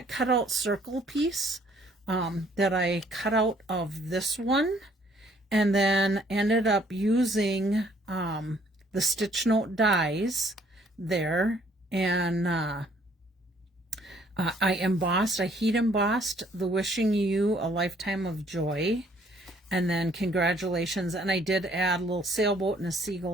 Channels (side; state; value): both; normal; correlation 0.62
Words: cutout circle piece that I cut out of this one, and then ended up using the stitch note dies there, and I heat embossed the Wishing You a Lifetime of Joy, and then Congratulations, and I did add a little sailboat and a